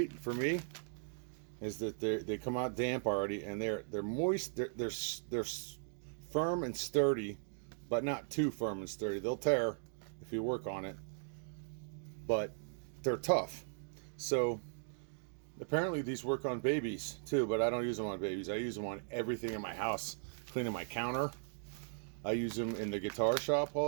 for me is that they come out damp already, and they're moist. They're firm and sturdy, but not too firm and sturdy. They'll tear if you work on it, but they're tough. So apparently these work on babies too, but I don't use them on babies. I use them on everything in my house, cleaning my counter. I use them in the guitar shop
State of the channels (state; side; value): silent; left; digital silence